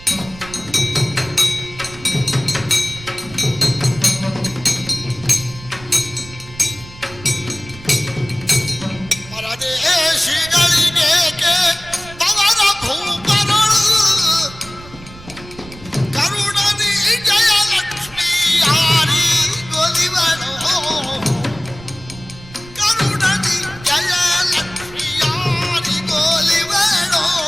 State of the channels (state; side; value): noise; right; rumble, 18 dB below the sound